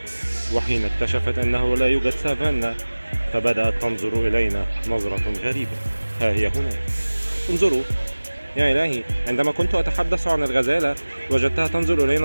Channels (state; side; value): inverted; both; correlation -1.00